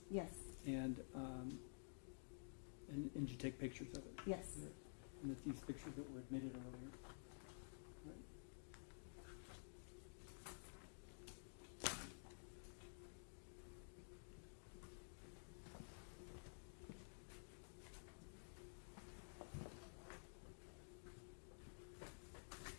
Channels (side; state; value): right; silent; digital silence